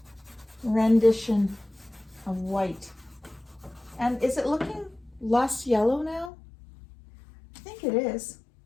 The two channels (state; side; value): drops out; right; at 6.3 s